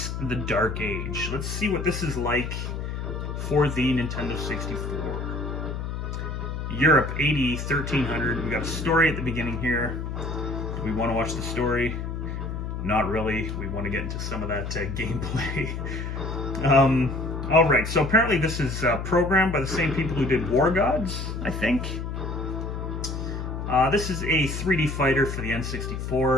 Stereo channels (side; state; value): left; noise; hum, 4 dB below the sound